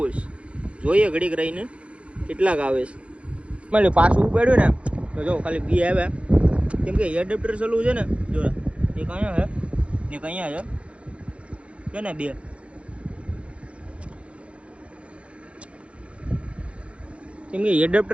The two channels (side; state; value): left; late; 0.061 ms